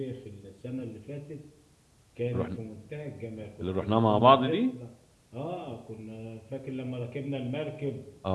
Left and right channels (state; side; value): identical; both; correlation 1.00